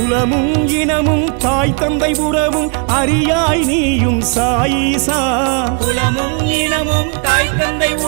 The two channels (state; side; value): quieter; left; 39.8 dB